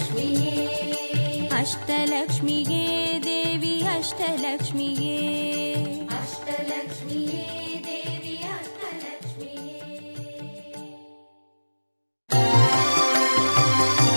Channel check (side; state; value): both; inverted; correlation -1.00